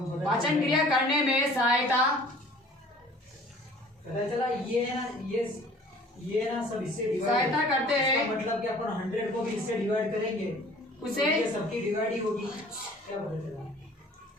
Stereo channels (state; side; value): normal; both; correlation 0.50